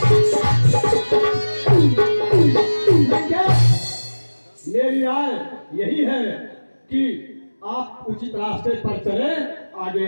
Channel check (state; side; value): inverted; both; correlation -1.00